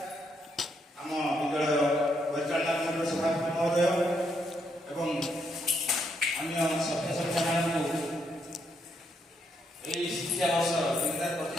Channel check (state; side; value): normal; both; correlation 0.76